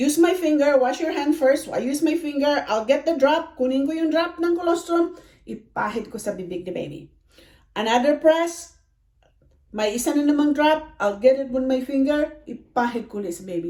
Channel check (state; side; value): identical; both; correlation 1.00